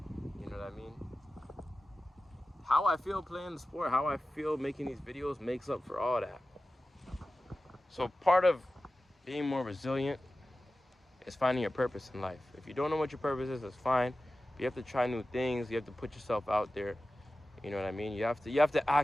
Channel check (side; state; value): both; normal; correlation 0.95